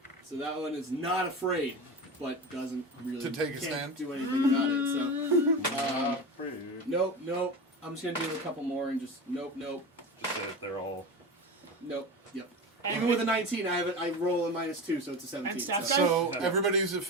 So that one is not afraid, but doesn't really To take a can't stand? do anything about it. So nope. I'm just gonna do a couple more and just nope. Just say that they're all. Yep. And Even with a 19, I roll a minus 2, so it's a 17. And staff so guy? So everybody who's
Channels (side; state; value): both; normal; correlation 0.26